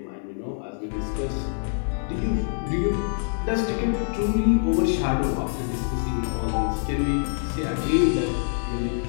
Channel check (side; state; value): right; silent; digital silence